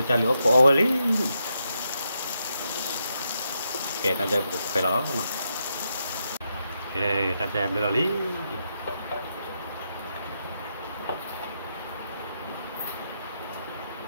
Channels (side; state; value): both; inverted; correlation -0.82